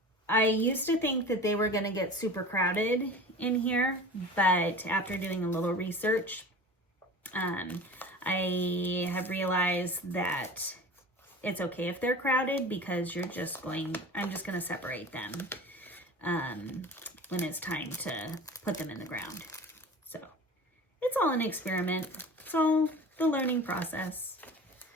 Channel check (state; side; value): normal; both; correlation 0.37